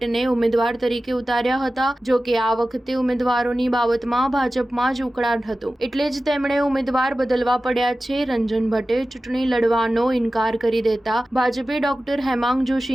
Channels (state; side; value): normal; both; correlation 0.95